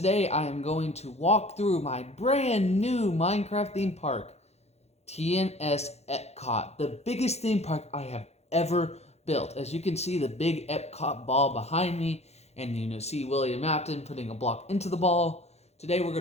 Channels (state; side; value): late; right; 0.31 ms